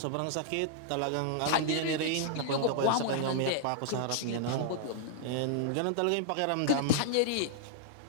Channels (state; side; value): different; both; correlation -0.01